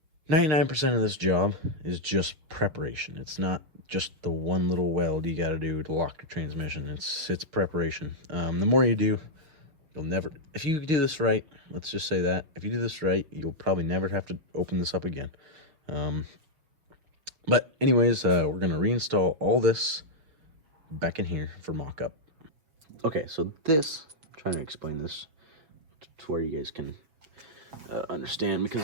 99% of this job is just preparation. It's not just the one little weld you got to do to lock your transmission. It's preparation. The more you do, you'll never, if you do this right, let's just say that, if you do this right, you'll probably never have to open this up again. But anyways, we're going to reinstall all this back in here for mock-up. Okay, so this, I'm trying to explain this to where you guys can understand, because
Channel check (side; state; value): left; late; 6.5 ms